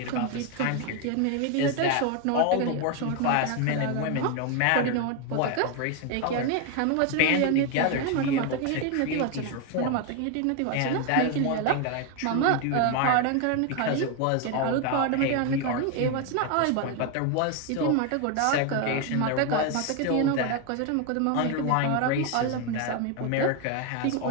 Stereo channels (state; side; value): different; both; correlation 0.01